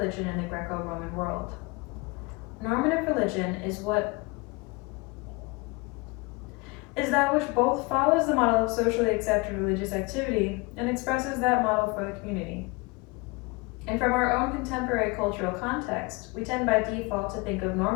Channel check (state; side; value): quieter; right; 26.6 dB